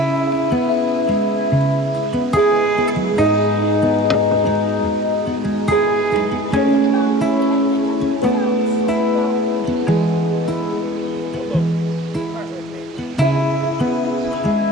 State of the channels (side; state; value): both; normal; correlation 0.45